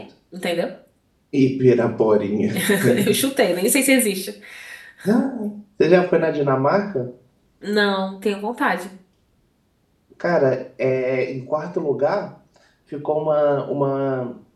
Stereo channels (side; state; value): both; identical; correlation 1.00